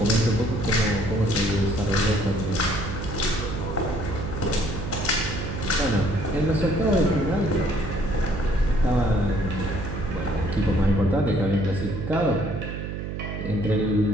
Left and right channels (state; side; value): noise; right; hum, 6 dB below the sound